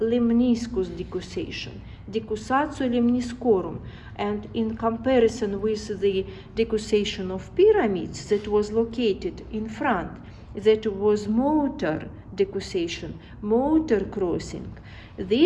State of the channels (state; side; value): identical; both; correlation 1.00